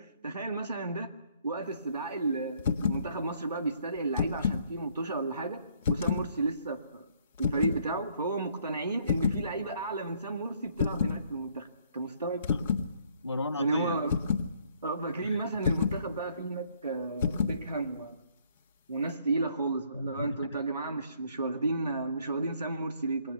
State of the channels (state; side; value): inverted; both; correlation -0.65